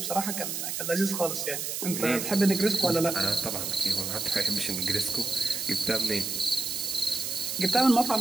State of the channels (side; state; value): right; noise; hiss, 3 dB below the sound